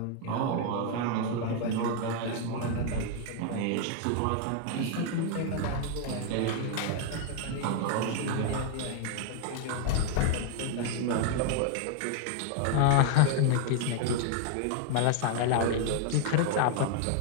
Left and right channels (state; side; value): different; both; correlation 0.00